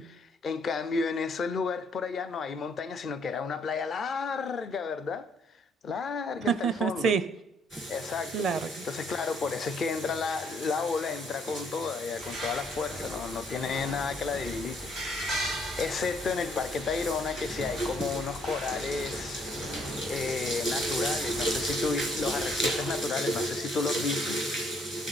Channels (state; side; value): normal; both; correlation 0.67